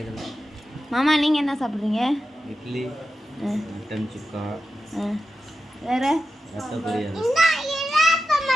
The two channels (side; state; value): both; normal; correlation 0.91